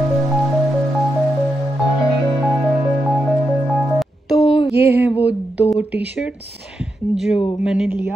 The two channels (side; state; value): both; normal; correlation 0.85